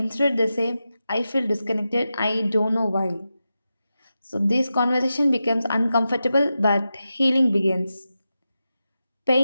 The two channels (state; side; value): inverted; both; correlation -0.91